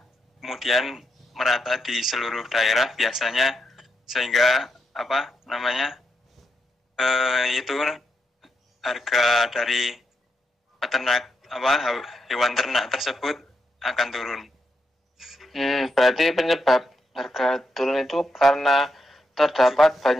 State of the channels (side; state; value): both; normal; correlation 0.82